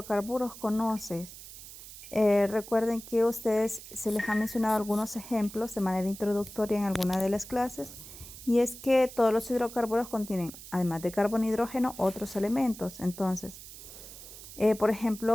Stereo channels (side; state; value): right; noise; hiss, 15 dB below the sound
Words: conoces? Recuerden que ustedes se les ha mencionado algunos ejemplos de manera introductoria en alguna de las clases, y es que todos los hidrocarburos contienen, además de carbono y hidrógeno, otros elementos. Entonces, por